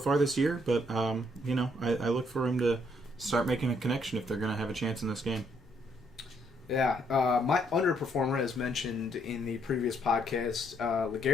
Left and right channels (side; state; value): both; normal; correlation 0.70